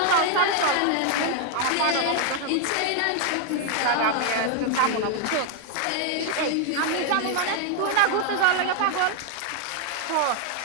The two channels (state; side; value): different; both; correlation 0.00